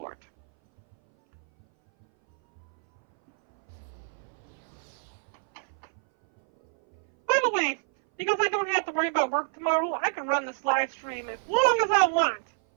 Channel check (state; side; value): silent; left; 58 dB below the other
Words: By the way, because I don't have to worry about work tomorrow, I can run this live stream as long as I want.